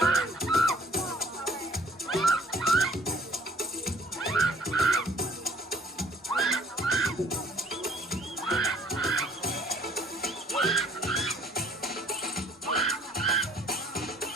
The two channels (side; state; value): both; normal; correlation 0.57